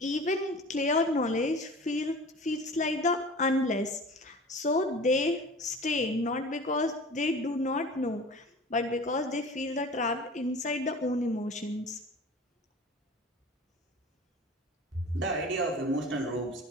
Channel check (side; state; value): both; normal; correlation 0.40